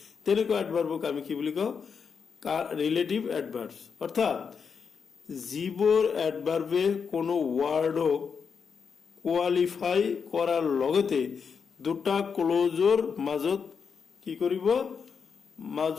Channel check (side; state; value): right; quieter; 6.1 dB